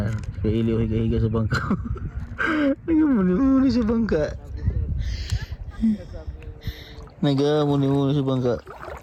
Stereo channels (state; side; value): identical; both; correlation 1.00